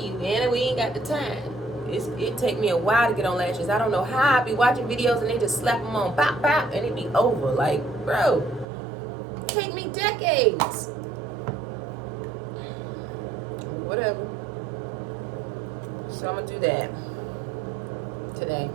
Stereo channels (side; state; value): left; drops out; at 8.7 s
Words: you. And we ain't got the time. It take me a while to get on lashes. I don't know how. I be watching videos and they just slap them on, pop, pop, and it be over. Like, bro, it take me decades. Whatever. So I'm gonna do that today.